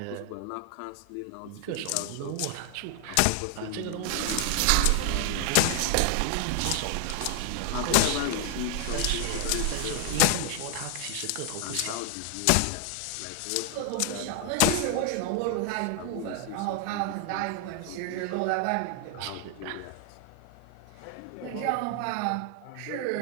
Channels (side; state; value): both; different; correlation 0.00